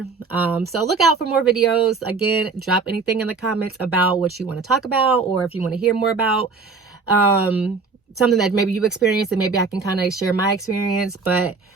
So look out for more videos. Again, drop anything in the comments about what you want to talk about, or if you want to hear more about something that maybe you experienced, and maybe I can kind of share my experience. But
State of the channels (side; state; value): left; quieter; 4.5 dB